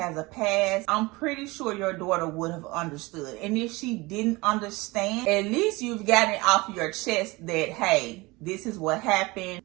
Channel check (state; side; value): quieter; left; 23.0 dB